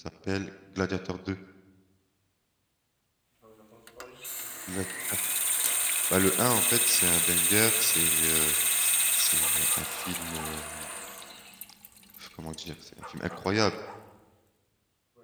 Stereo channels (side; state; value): both; identical; correlation 1.00